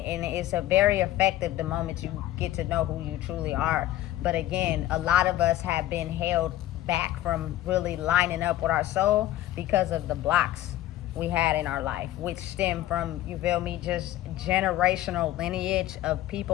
a very effective the moment you get to know who you truly are. But again, a lot of us have been held back from really lining up with our soul because of the blocks we had in our life, which stem from, you feel me, just generational lineage of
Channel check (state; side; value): quieter; right; 14.4 dB